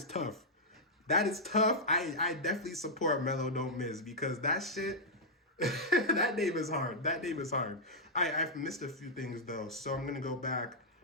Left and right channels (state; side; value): normal; both; correlation -0.06